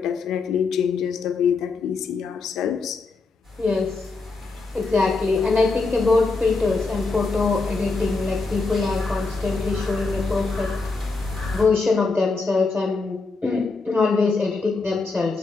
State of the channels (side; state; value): right; quieter; 3.9 dB